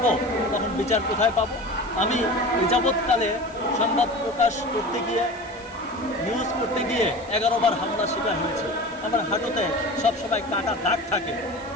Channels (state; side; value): noise; left; hiss, 26 dB below the sound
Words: তখন বিচার কোথায় পাবো? আমি এই যাবৎকালে সংবাদ প্রকাশ করতে গিয়ে, নিউজ করতে গিয়ে 11 বার হামলার শিকার হয়েছে। আমার হাঁটুতে সবসময় কাটা দাগ থাকে।